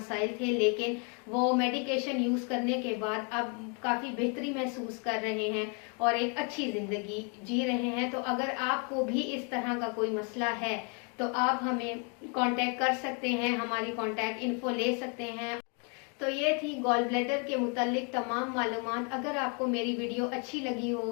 थे, लेकिन वो मेडिकेशन यूज करने के बाद अब काफी बेहतरी महसूस कर रहे हैं और एक अच्छी जिंदगी जी रहे हैं। तो अगर आपको भी इस तरह का कोई मसला है तो आप हमें कांटेक्ट कर सकते हैं, हमारी कांटेक्ट इन्फो ले सकते हैं। तो ये थी गॉल ब्लैडर के मुतालिक तमाम मालूमात। अगर आपको मेरी वीडियो अच्छी लगी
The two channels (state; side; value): quieter; right; 36.8 dB